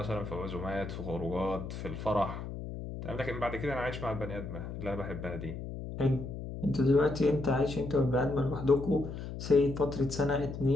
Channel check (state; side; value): noise; left; hum, 8 dB below the sound